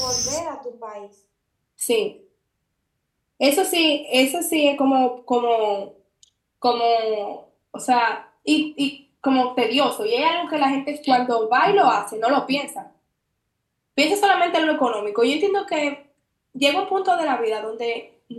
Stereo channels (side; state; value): both; identical; correlation 1.00